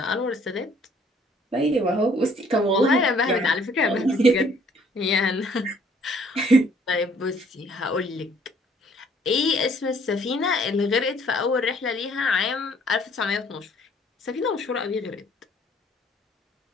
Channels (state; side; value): normal; both; correlation 0.60